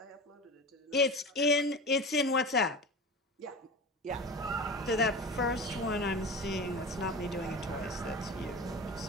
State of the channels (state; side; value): normal; both; correlation 0.31